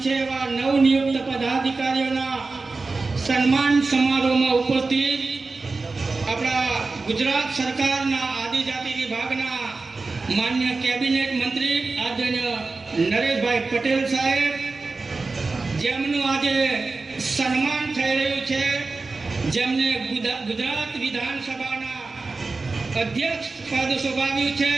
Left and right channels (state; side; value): quieter; left; 3.8 dB